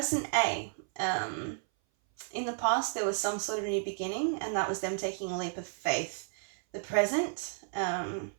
A, in the past there was some sort of new beginning, and that was them taking a leap of faith. The present,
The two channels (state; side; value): silent; left; 56 dB below the other